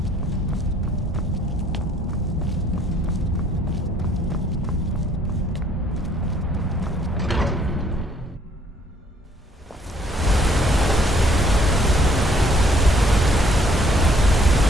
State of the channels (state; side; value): normal; both; correlation 0.62